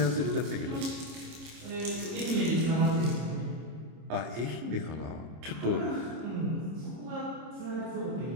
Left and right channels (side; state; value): left; late; 26 ms